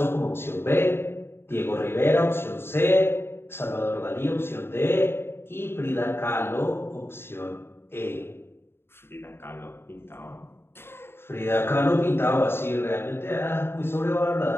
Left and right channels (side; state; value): right; late; 0.11 ms